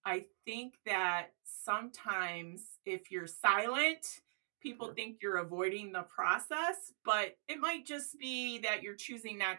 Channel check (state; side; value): silent; left; digital silence